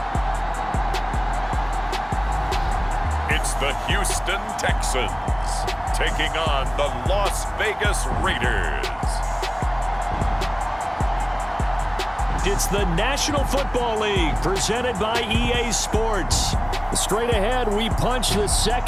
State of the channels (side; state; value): both; identical; correlation 1.00